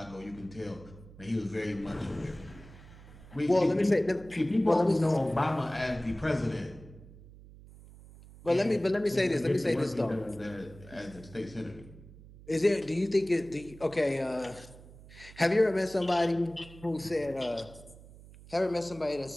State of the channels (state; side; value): noise; right; hum, 19 dB below the sound